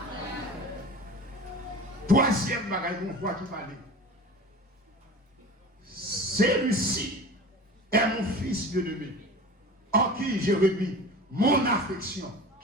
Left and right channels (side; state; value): both; normal; correlation 0.36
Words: Troisième bagaille qu'on voit qui parle. Celui-ci est mon fils bien-aimé, en qui j'ai remis mon affection.